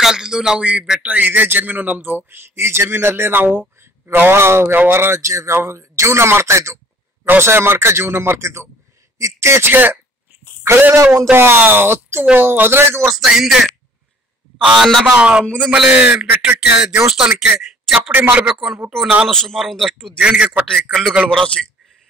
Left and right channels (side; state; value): both; normal; correlation 0.54